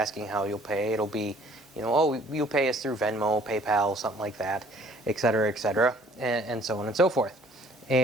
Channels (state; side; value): normal; both; correlation 0.57